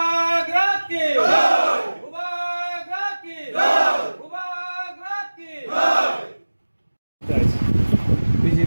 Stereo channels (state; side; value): inverted; both; correlation -1.00